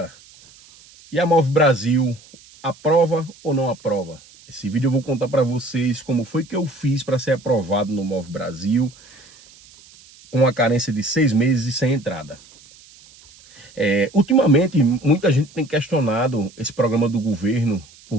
E a Move Brasil, aprova ou não aprova? Esse vídeo eu vou contar para vocês como foi que eu fiz para ser aprovado no Move Brasil, com a carência de 6 meses e sem entrada. Ultimamente, muita gente tem questionado esse programa do governo,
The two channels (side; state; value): right; noise; hiss, 24 dB below the sound